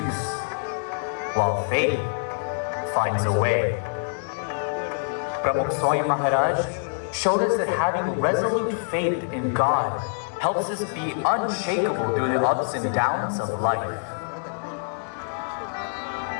while faith finds a way. Brahman Swami Maharaj showed us that having resolute faith in God helps us be unshakable through the ups and downs of life.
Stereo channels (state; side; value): silent; right; digital silence